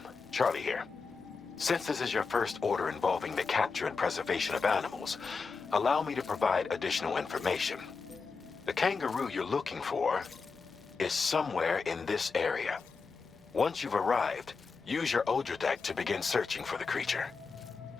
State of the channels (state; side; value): quieter; right; 4.8 dB